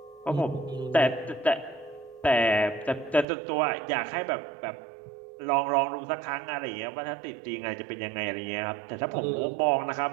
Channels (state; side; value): drops out; left; at 3.2 s